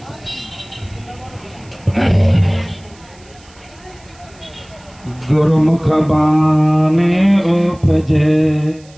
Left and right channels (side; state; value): right; noise; hiss, 27 dB below the sound